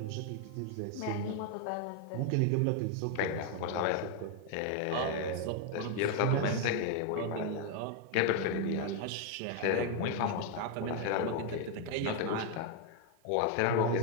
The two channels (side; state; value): both; different; correlation 0.01